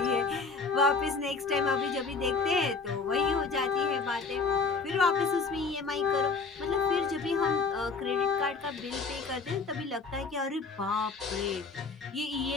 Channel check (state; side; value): quieter; right; 4.5 dB